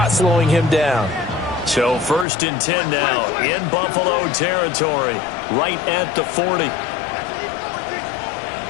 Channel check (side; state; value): right; drops out; at 2.2 s